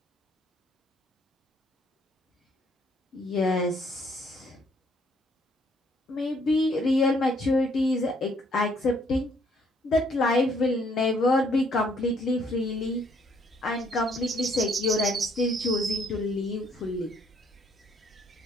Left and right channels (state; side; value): normal; both; correlation 0.66